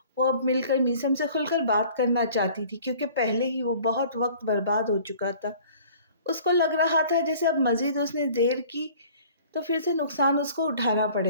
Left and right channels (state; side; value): inverted; both; correlation -0.50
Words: وہ اب مل کر میسم سے کھل کر بات کرنا چاہتی تھی، کیونکہ پہلے ہی وہ بہت وقت برباد ہو چکا تھا۔ اس کو لگ رہا تھا جیسے اب مزید اس نے دیر کی تو پھر سے نقصان اس کو اٹھانا